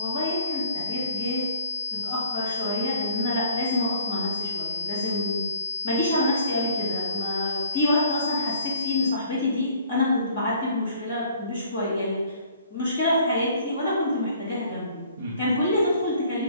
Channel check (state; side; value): inverted; both; correlation -0.57